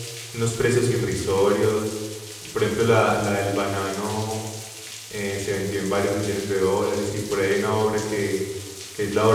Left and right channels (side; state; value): both; identical; correlation 1.00